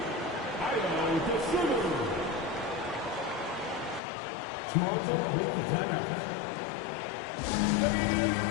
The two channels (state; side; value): drops out; right; at 4.0 s